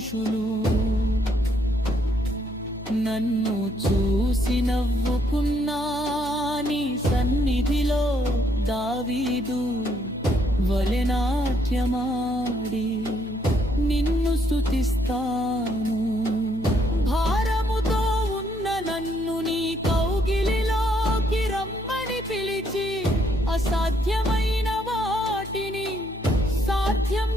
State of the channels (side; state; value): both; normal; correlation 0.71